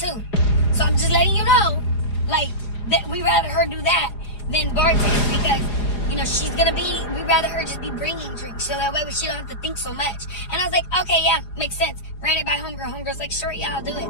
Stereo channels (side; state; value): right; late; 4.9 ms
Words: So I'm just letting you know like, that we rather her do that than bartend because, you know, we'd rather her just be bringing drinks so that way she don't have to think so much. And I was like, okay, yeah, makes sense. Ran it by homegirl. Homegirl's like, sure, yeah, I'll do it.